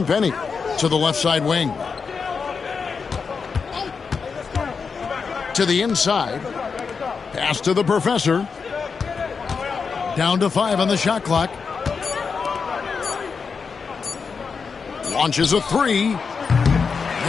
to the left side wing. To the inside. Pass to the professor. Down to 5 on the shot clock. Launches a 3.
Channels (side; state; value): right; quieter; 5.4 dB